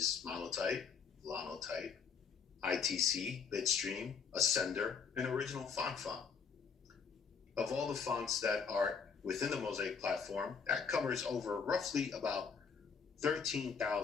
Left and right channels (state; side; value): quieter; right; 6.0 dB